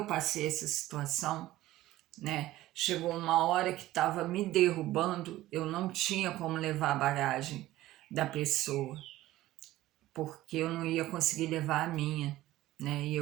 passei essa situação, né? Chegou uma hora que estava me derrubando, eu não tinha como levar a bagagem da pessoa, porque eu não ia conseguir levar a minha, né? E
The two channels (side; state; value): left; quieter; 15.9 dB